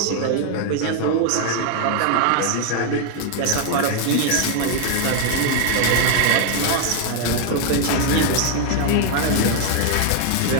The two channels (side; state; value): both; different; correlation 0.00